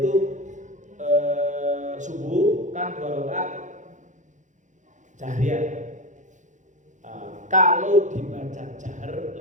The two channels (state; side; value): late; left; 0.36 ms